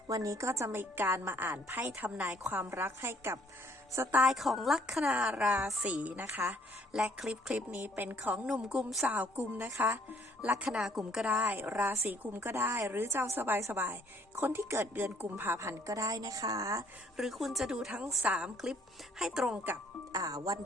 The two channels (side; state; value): both; normal; correlation 0.63